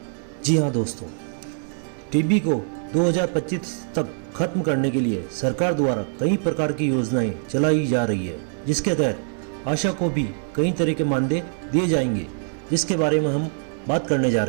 जी हाँ दोस्तों, टीबी को 2025 तक खत्म करने के लिए सरकार द्वारा कई प्रकार की योजनाएं चलाई जा रही है, जिसके तहत आशा को भी कई तरह के मानदेय दिए जाएंगे, जिसके बारे में हम बात करने जा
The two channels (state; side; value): silent; left; 63 dB below the other